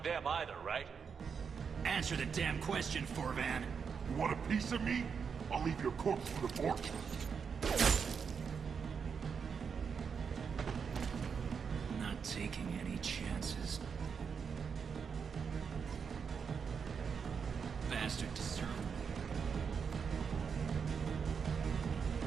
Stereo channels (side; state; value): left; quieter; 6.3 dB